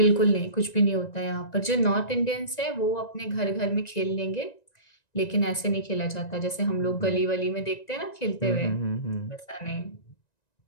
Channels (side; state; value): right; late; 1.9 ms